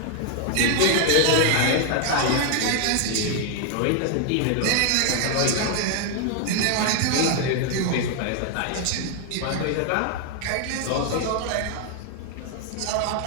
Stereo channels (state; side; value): different; both; correlation 0.00